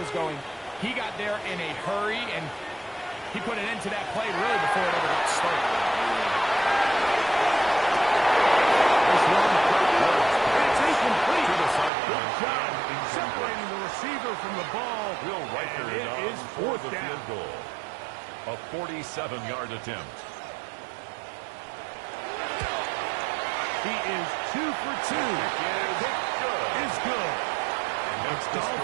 going, he got there in a hurry, and he put an end to that play really before it ever got started. This one, it's a 7-yard attempt. He is 2 for 2. Kick is good. It's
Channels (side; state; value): left; drops out; at 11.9 s